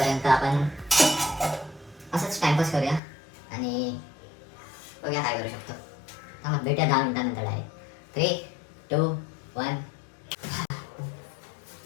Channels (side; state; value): right; drops out; at 3.0 s